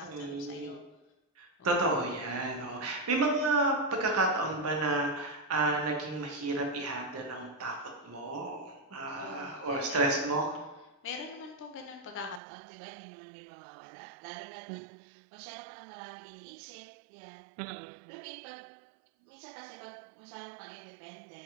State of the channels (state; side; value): drops out; left; at 12.4 s